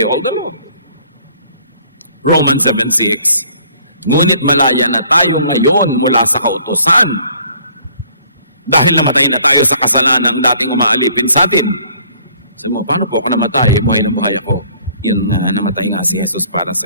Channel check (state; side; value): inverted; both; correlation -0.58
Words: all the law. Romans 7:6. Ngunit malaya na tayo ngayon mula sa kautusan dahil namatay na tayo sa kasalanang dating umaalipin sa atin. Sabi mo, paano po ako namatay? Buhay na buhay ako. Yun nga, namatay nga si Jesus para sa